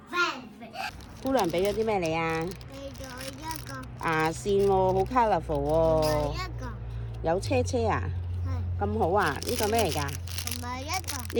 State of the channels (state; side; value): identical; both; correlation 1.00